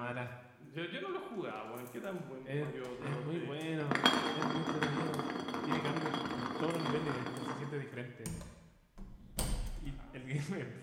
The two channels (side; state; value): both; identical; correlation 1.00